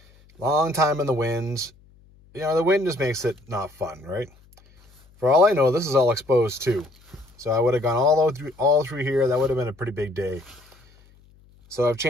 Long time in the wind. You know, the wind just makes it not fun, right? For all I know, this is all exposed too. So I would have gone all through here. That would have been a pretty big day. So I've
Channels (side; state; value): left; noise; hum, 29 dB below the sound